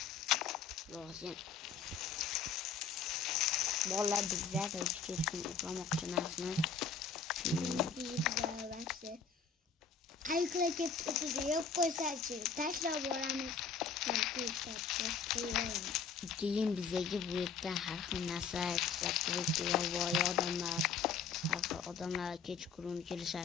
Lozim. Bola bizlar kechqurun uxlamoqchi emasmiz. Aykla ketib yo'q qo'ysachi, tashlab boramiz. Keyin bizga bu yerdan har xil narsa ishlab turibdi, yovvoyi odamlar Har xil odamlar kechqurun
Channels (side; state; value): right; quieter; 5.9 dB